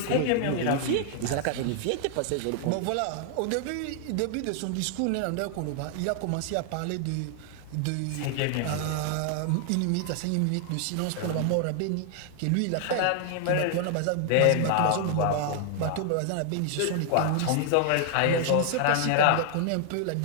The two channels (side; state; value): both; different; correlation 0.00